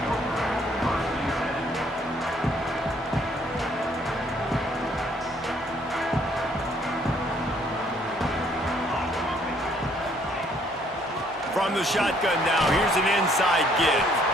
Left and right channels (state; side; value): normal; both; correlation 0.65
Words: From the shotgun now, here's an inside give.